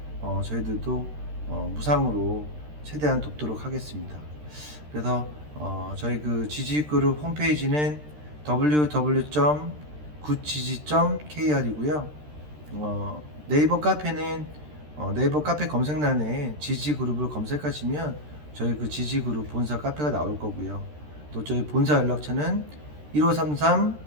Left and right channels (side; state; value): left; late; 13 ms